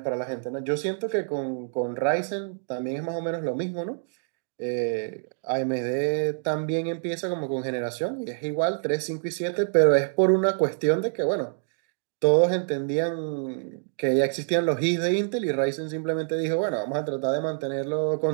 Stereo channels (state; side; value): silent; left; digital silence